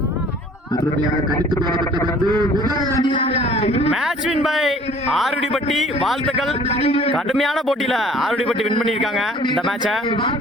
Match win by Arudippatti. வாழ்த்துக்கள். கடுமையான போட்டியில ஆருடிப்பட்டி வின் பண்ணியிருக்காங்க இந்த மேட்சை.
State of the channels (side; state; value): both; normal; correlation 0.52